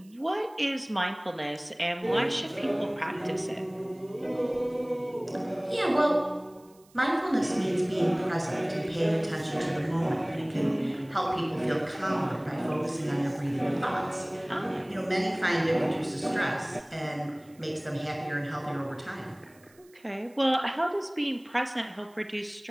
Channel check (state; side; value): noise; right; hiss, 29 dB below the sound